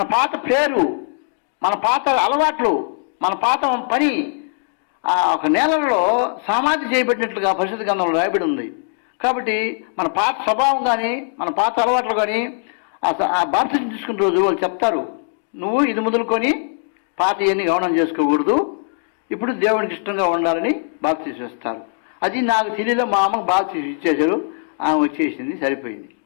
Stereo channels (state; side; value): silent; right; digital silence